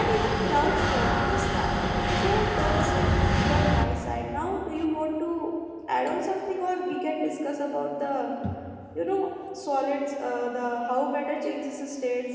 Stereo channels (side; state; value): both; identical; correlation 1.00